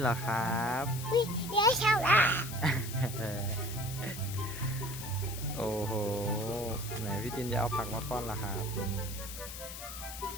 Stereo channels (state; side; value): noise; left; hiss, 10 dB below the sound